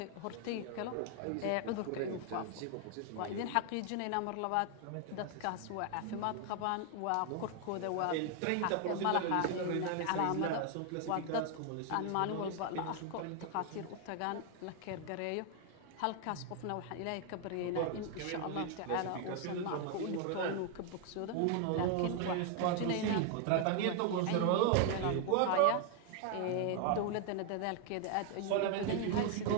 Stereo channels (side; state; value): both; different; correlation 0.00